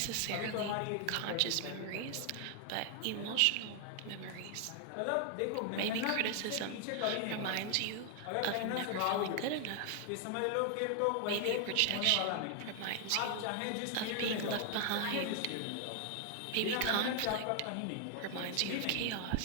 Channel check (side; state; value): both; different; correlation 0.00